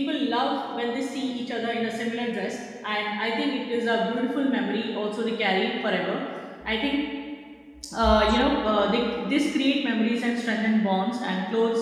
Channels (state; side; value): identical; both; correlation 1.00